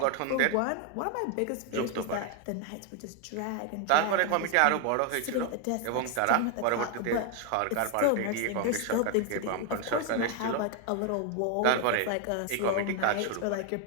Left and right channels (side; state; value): both; different; correlation 0.01